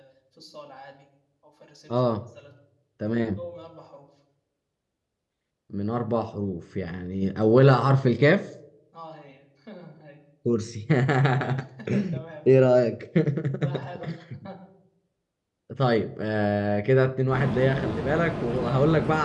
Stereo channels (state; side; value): identical; both; correlation 1.00